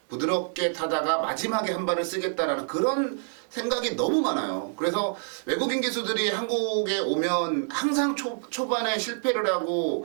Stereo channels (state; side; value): silent; left; digital silence